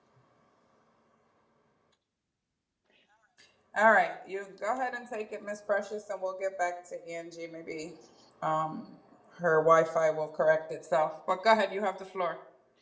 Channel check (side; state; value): both; identical; correlation 1.00